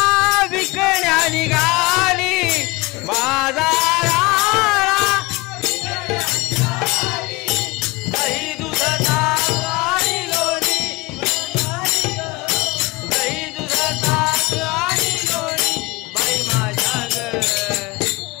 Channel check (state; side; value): quieter; right; 23.4 dB